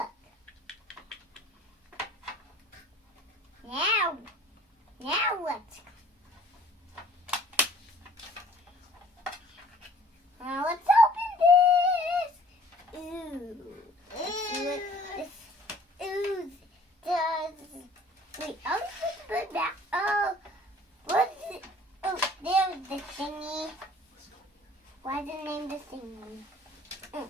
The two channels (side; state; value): both; normal; correlation 0.53